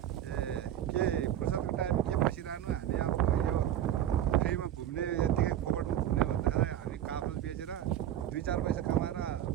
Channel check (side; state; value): left; quieter; 11.2 dB